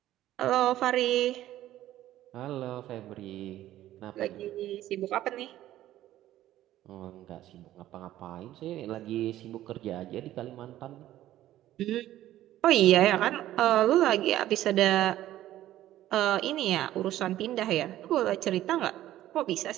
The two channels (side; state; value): left; quieter; 13.7 dB